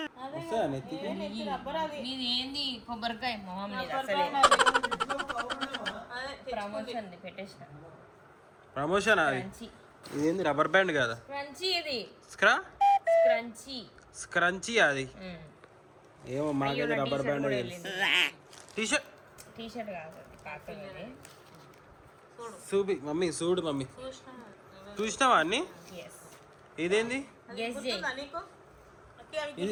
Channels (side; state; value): both; identical; correlation 1.00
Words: వస్తుందా నెత్తికి? నీది ఏంది కొబ్బరికాయ మొహం ప్రమోషన్ పెట్టేసిన. ప్రమోషన్ అది. ఇదేంది రబ్బర్ బ్యాండ్ కదా? క్రంచీ ఇది క్రంచీ స్క్రంచీ అది. ఏమో మాకైతే రబ్బర్ బ్యాండ్. టీషర్ట్ కాదు కాకపోతే చూపి మమ్మీ, చూడు మమ్మీ. చూసినావా అన్ని? ఇదేంది?